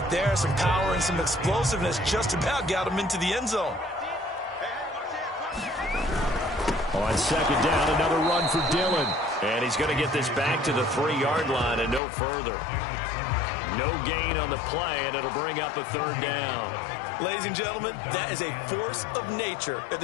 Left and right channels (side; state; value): right; drops out; at 12.0 s